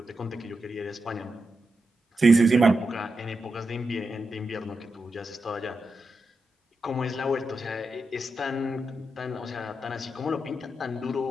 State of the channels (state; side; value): normal; both; correlation 0.88